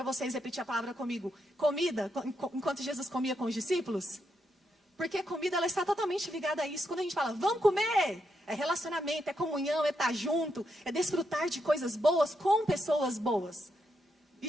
vocês repetir a palavra comigo? Comida, enquanto Jesus comia com os discípulos? Porque a comida, ela está totalmente ligada a isso. Quando a gente fala, vamos comer, é relacionamento, é comunhão, é estar junto, é desfrutar de coisas boas com pessoas boas. E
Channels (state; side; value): normal; both; correlation 0.81